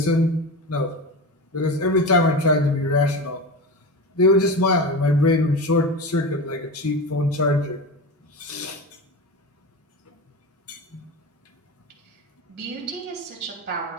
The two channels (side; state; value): both; normal; correlation 0.25